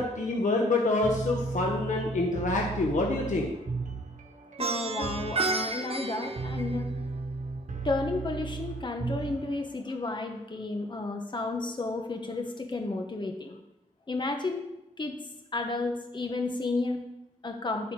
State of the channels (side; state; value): both; normal; correlation 0.59